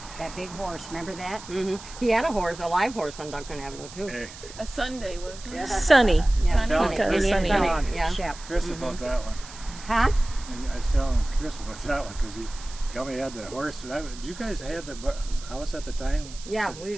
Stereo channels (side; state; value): right; noise; hiss, 16 dB below the sound